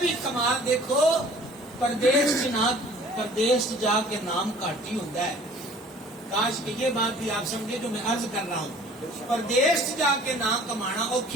کمال دیکھو، پردیش جا کے نام کاٹی ہوتا ہے، کاش کہ یہ بات بھی آپ سمجھے جو میں عرض کر رہا ہوں، پردیش جا کے نام کمانا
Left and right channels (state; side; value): normal; both; correlation 0.50